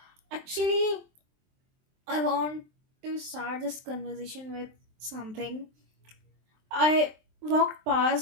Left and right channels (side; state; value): left; late; 23 ms